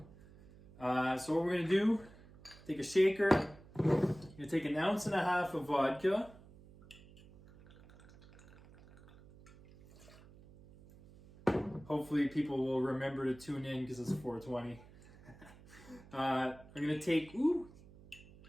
So what we're going to do, take a shaker. You're going to take 1.5 ounces of vodka. Hopefully people will remember to tune in because it's 420. I'm going to take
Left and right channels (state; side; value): noise; right; hum, 22 dB below the sound